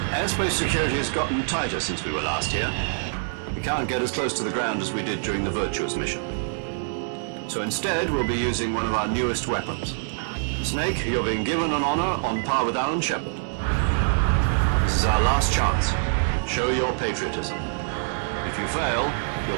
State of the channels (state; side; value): silent; left; digital silence